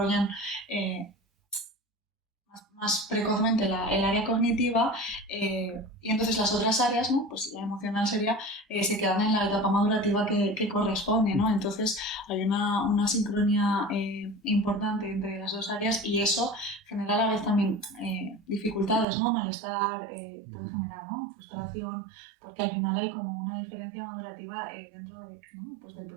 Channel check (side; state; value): left; drops out; at 19.1 s